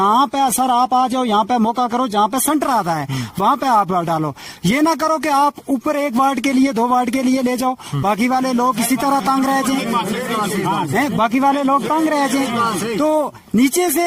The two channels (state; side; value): identical; both; correlation 1.00